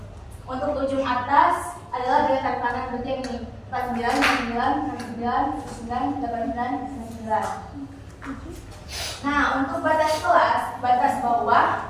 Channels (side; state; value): both; identical; correlation 1.00